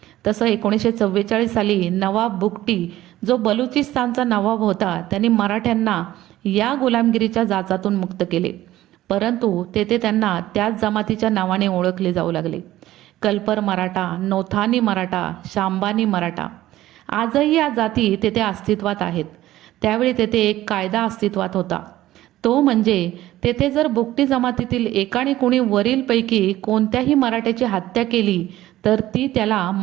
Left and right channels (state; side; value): quieter; left; 15.0 dB